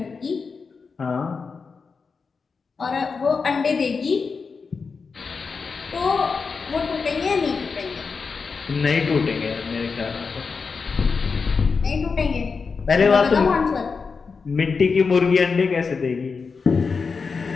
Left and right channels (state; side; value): quieter; right; 5.0 dB